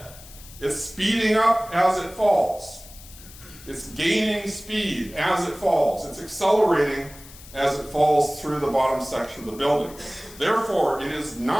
It's speeding up as it falls. It's gaining speed as it falls. It's accelerating as it falls through the bottom section of the building. Therefore, it is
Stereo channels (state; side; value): noise; left; hiss, 19 dB below the sound